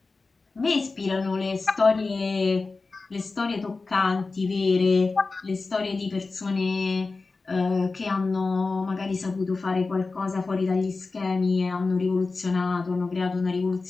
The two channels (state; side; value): quieter; right; 3.9 dB